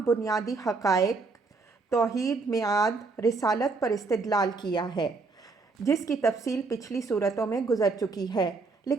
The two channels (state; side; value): quieter; left; 4.0 dB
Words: بنیادی حقائق، توحید، میعاد، رسالت پر استدلال کیا ہے، جس کی تفصیل پچھلی صورتوں میں گزر چکی ہے،